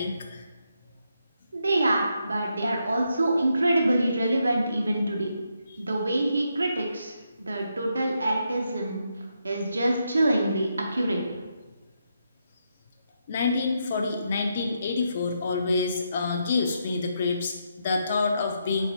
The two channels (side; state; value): both; inverted; correlation -0.80